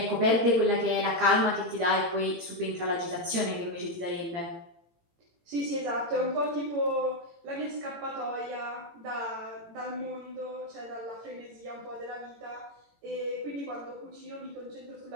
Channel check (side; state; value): left; late; 18 ms